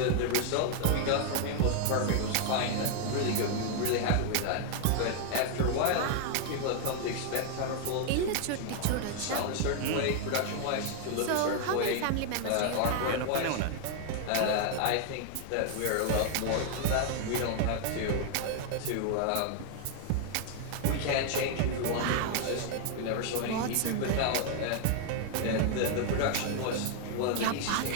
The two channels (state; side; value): different; both; correlation 0.00